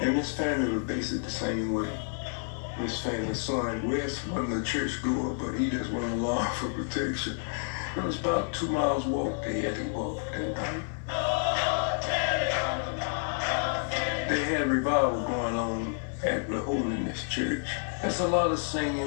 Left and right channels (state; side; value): silent; right; digital silence